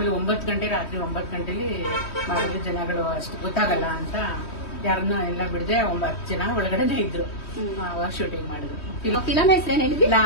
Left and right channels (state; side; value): late; right; 3.1 ms